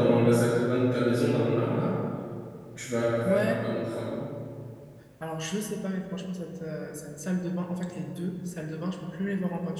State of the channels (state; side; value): identical; both; correlation 1.00